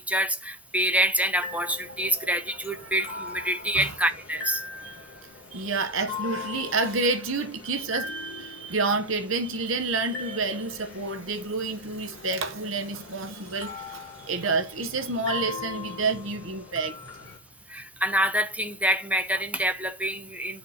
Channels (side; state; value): both; normal; correlation 0.15